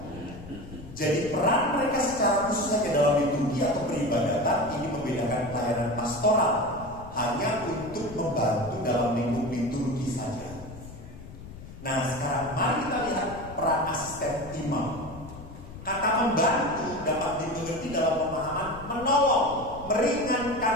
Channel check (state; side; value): noise; left; rumble, 15 dB below the sound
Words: Jadi peran mereka secara khusus hanya dalam liturgi atau peribadatan ini membedakan pelayanan pastoral hanya untuk membantu dalam lingkup liturgi saja. Nah sekarang mari kita lihat peran asisten imam. Kata membantu dapat dimengerti dalam pemahaman menolong,